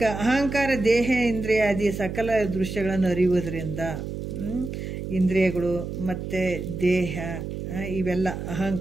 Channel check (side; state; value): right; noise; hum, 6 dB below the sound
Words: ಅಹಂಕಾರ ದೇಹ ಇಂದ್ರಿಯಾದಿ ಸಕಲ ದೃಶ್ಯಗಳನ್ನು ಅರಿಯುವುದರಿಂದ, ಇಂದ್ರಿಯಗಳು ಮತ್ತು ದೇಹ ಇವೆಲ್ಲ